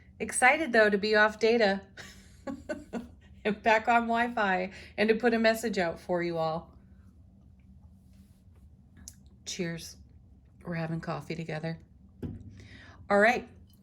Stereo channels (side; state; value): both; identical; correlation 1.00